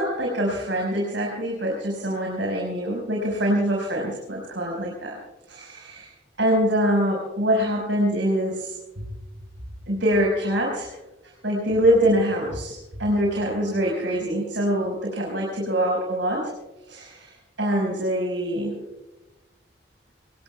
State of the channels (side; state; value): both; normal; correlation 0.39